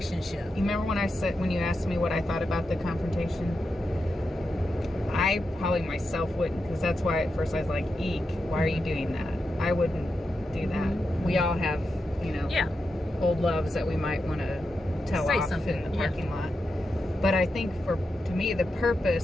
You remember when you asked me what I thought about the confrontation? I probably myself wouldn't, because that's why at first I was like, eek, why are you doing that? I wouldn't do that. We all have, you know, old loves that we might want to tell off in the parking lot. But I think to me,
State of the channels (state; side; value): normal; both; correlation 0.88